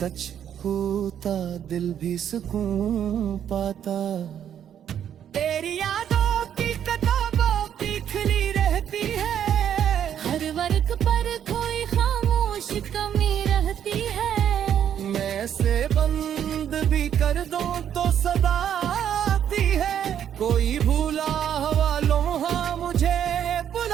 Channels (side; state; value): left; quieter; 9.5 dB